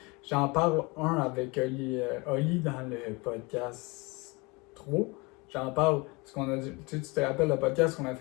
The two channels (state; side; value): quieter; right; 26.9 dB